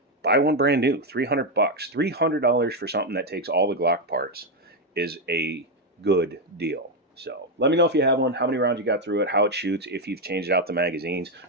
buy one brand new, $300. $300 for something that takes all the Glock parts is a good deal. So let me know if you have one, how many rounds you got through it, how it shoots, if you've changed out the magazines.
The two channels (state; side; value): normal; both; correlation 0.05